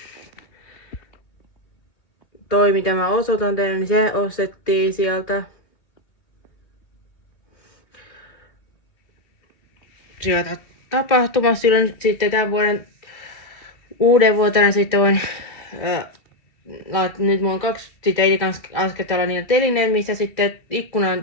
Toi mitä mä osoitan teille, niin se ostettiin sieltä. Sieltä tapahtumassa silloin sitten tämän vuoden uuden vuotena sitten voin nyt mulla on 2 sitten ei kans asketella niitä telineen, missä sitten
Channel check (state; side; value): late; right; 3.0 ms